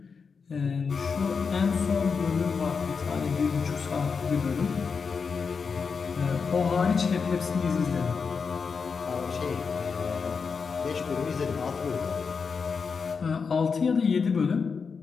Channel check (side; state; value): right; quieter; 5.5 dB